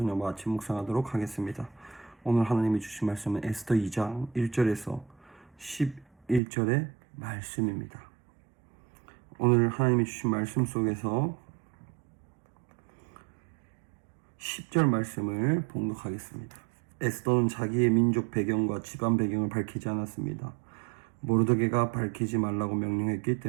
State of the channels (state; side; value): drops out; left; at 6.4 s